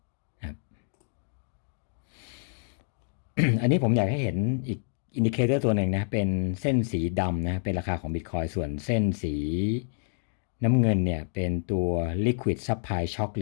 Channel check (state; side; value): silent; right; 59 dB below the other